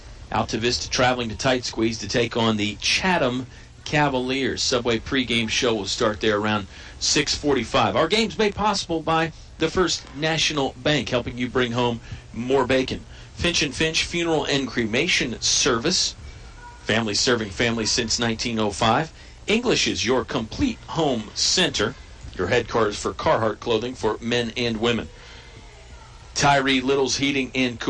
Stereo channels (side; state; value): both; identical; correlation 1.00